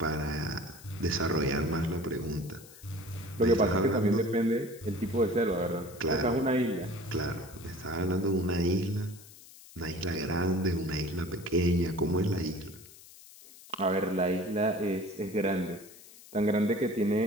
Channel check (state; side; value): noise; left; hiss, 20 dB below the sound